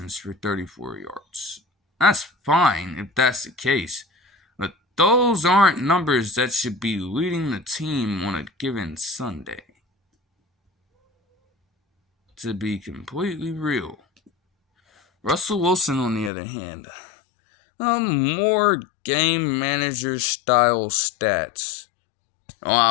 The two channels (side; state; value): right; drops out; at 16.3 s